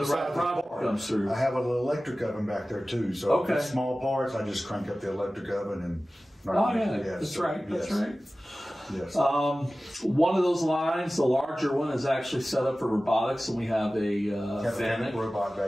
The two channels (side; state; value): both; normal; correlation 0.96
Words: right product comes through. I have an electric oven back there too. So if it's small parts, I just crank up the electric oven and. That's right. Yes. One of those lines, the larger one, is actually set up for robotics, and we have a Fanuc robot